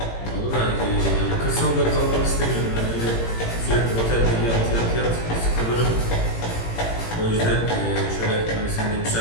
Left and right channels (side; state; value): right; late; 18 ms